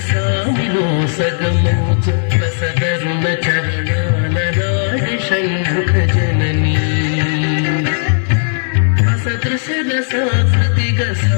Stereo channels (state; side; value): silent; right; digital silence